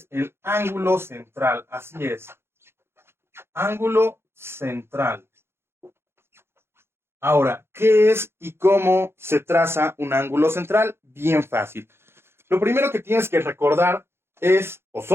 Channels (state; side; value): late; left; 0.12 ms